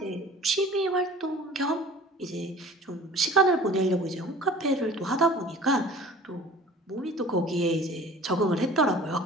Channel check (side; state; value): both; normal; correlation 0.45